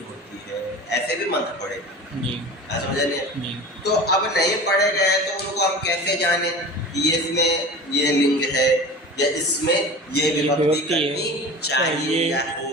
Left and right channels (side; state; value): both; normal; correlation 0.35